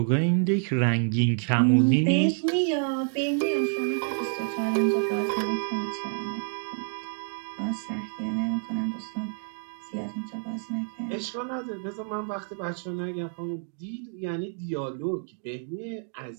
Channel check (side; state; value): left; silent; 59 dB below the other